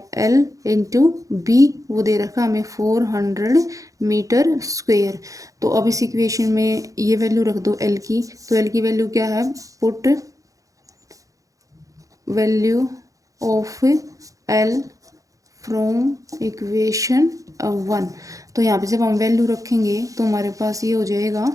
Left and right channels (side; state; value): left; late; 0.16 ms